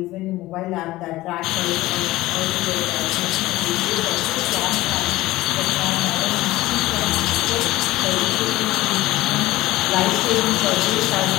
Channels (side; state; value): right; quieter; 17.7 dB